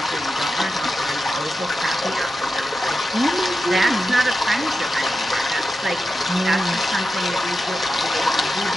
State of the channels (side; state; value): both; normal; correlation 0.90